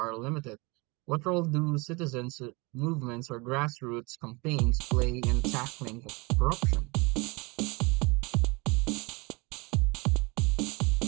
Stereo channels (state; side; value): quieter; left; 27.1 dB